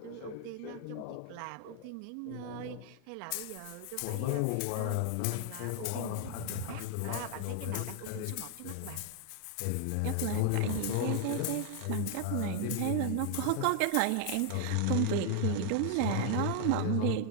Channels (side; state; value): both; different; correlation 0.00